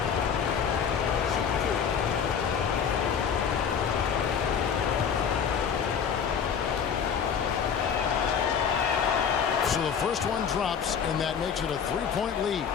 So the first one drops, and that makes it a 3-point lead.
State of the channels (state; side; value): quieter; right; 7.2 dB